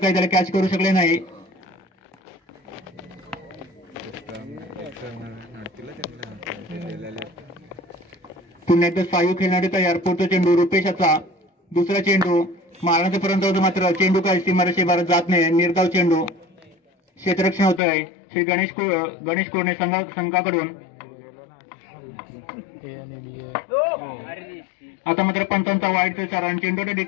त्याला कॅच करू शकले नाही। पुन्हा एकदा सायू खेळणारे तयार। पुढचा चेंडू रुपेशचा। दुसरा चेंडू मारण्याचा पर्यंत होतो मात्र चेंडू काही सीमारेषेबाहेर जात नाही। निर्धाव चेंडू क्षेत्ररक्षण होतंय श्री गणेश कोरणे संघाकडून। आता मात्र पंचांचा वाईटचा इशारा आणि चेंडूच्या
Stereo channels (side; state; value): right; drops out; at 17.8 s